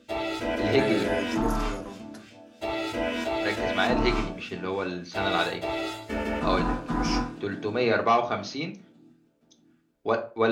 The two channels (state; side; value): identical; both; correlation 1.00